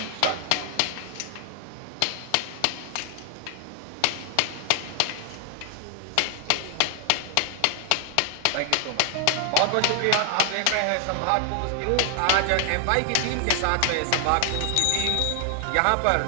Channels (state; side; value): different; both; correlation 0.00